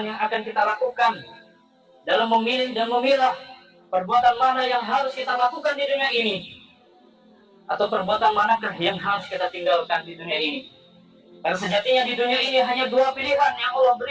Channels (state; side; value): identical; both; correlation 1.00